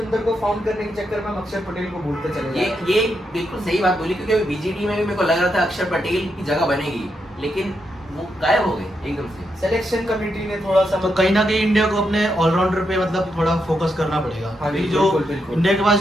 को फाउंड करने के चक्कर में हम अक्षर पटेल को भूलते चले जाते हैं। ये बिल्कुल सही बात बोली, क्योंकि अभी BGT में भी मेरे को लग रहा था अक्षर पटेल की जगह बनेगी, लेकिन वो गायब हो गए एकदम से। सिलेक्शन कमेटी ने थोड़ा सा तो कहीं ना कहीं इंडिया को अपने ऑलराउंडर पे मतलब थोड़ा फोकस करना पड़ेगा। हाँ, अभी जो बिल्कुल। इंडिया के पास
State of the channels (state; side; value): normal; both; correlation 0.82